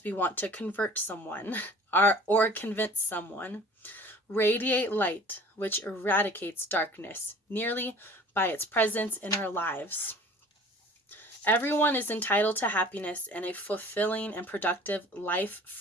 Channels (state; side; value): normal; both; correlation 0.47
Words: we want to convert someone or convince someone. Radiate light, which eradicates darkness, merely by its presence in our lives. Everyone is entitled to happiness and a fulfilling and productive life